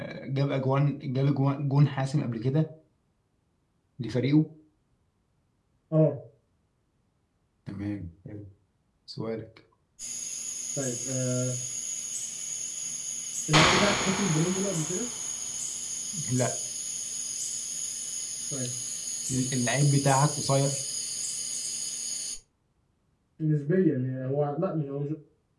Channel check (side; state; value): both; identical; correlation 1.00